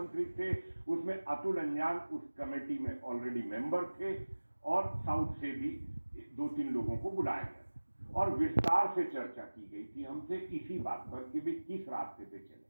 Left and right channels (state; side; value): inverted; both; correlation -1.00